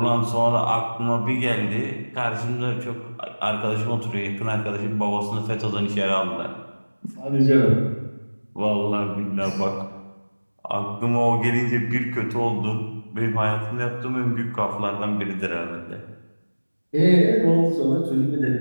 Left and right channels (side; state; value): both; inverted; correlation -1.00